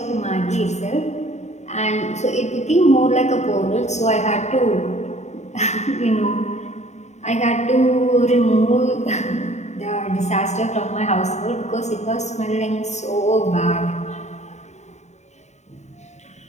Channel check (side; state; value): right; late; 0.33 ms